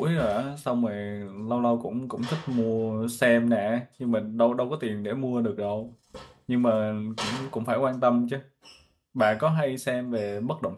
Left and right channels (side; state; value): both; identical; correlation 1.00